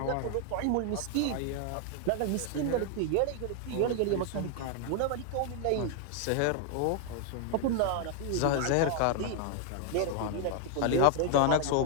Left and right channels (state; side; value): different; both; correlation 0.00